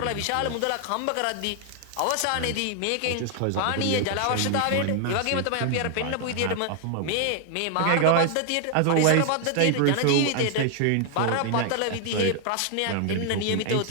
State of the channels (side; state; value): both; different; correlation 0.00